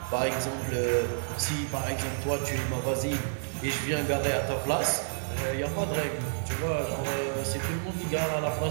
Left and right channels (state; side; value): silent; left; 58 dB below the other